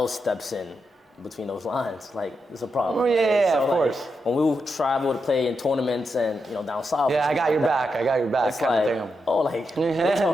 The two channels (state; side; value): normal; both; correlation 0.85